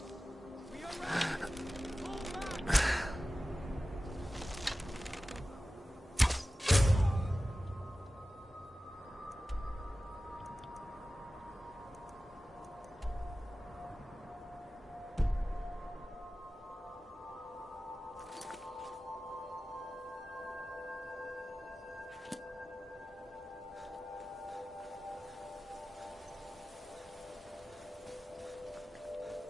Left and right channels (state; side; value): normal; both; correlation 0.95